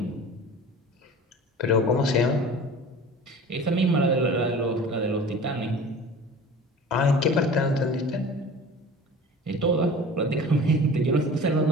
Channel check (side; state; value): both; normal; correlation 0.40